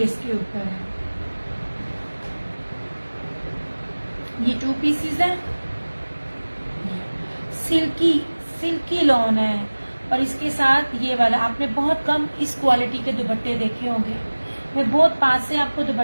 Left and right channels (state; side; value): inverted; both; correlation -1.00